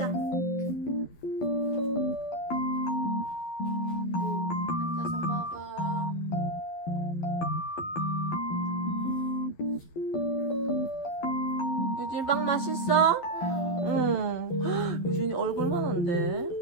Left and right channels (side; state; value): right; late; 12 ms